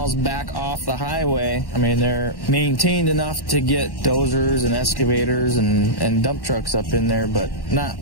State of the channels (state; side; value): late; right; 1.1 ms